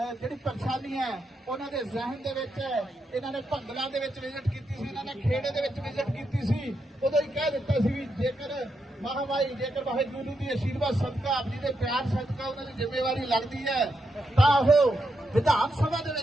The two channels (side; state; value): both; normal; correlation 0.83